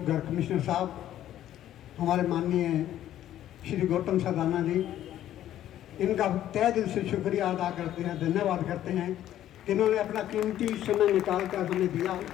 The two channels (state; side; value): quieter; right; 12.2 dB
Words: गर्ग कमिश्नर साहब, हमारे माननीय श्री गौतम सरदाना जी, इनका तहे दिल से शुक्रिया अदा करते हैं, धन्यवाद करते हैं कि इन्होंने अपना कीमती समय निकाल कर हमें दिया।